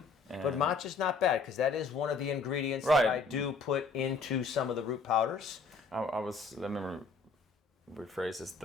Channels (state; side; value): quieter; right; 4.4 dB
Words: But matcha's not bad, because that is one of the ingredients Right. that I do put into some of the root powders. Let me rephrase this,